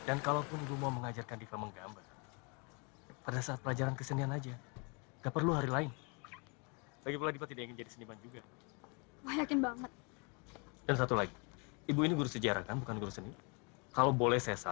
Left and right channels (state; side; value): quieter; right; 33.5 dB